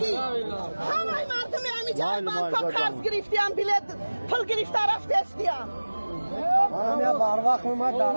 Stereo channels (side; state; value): both; inverted; correlation -1.00